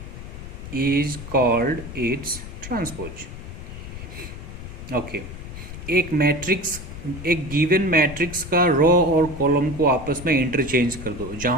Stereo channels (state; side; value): noise; left; rumble, 11 dB below the sound